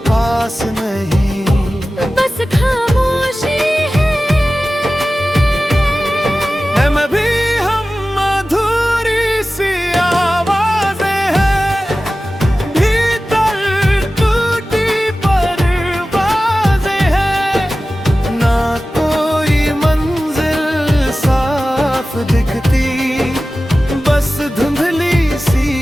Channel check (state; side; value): normal; both; correlation 0.95